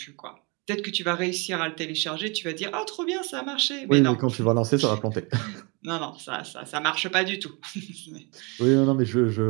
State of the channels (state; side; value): quieter; left; 30.2 dB